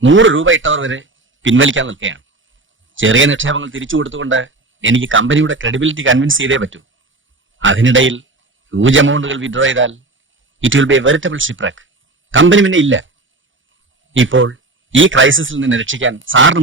100 രൂപ ഇട്ടവർ വരെ പിൻവലിക്കാൻ നിൽക്കുകയാണ്. ചെറിയ നിക്ഷേപങ്ങൾ തിരിച്ചു കൊടുത്തുകൊണ്ട് എനിക്ക് കമ്പനിയുടെ ക്രെഡിബിലിറ്റി കൺവിൻസ് ചെയ്തേ പറ്റൂ. അതിനിടയിൽ ഹ്യൂജ് എമൗണ്ടുകൾ വിഡ്രോ ചെയ്താൽ it will be a veritable shipwreck. Company പിന്നെ ഇല്ല. ഇപ്പോൾ ഈ ക്രൈസിസിൽ നിന്ന് രക്ഷിക്കാൻ സാറിന്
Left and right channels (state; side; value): quieter; left; 3.1 dB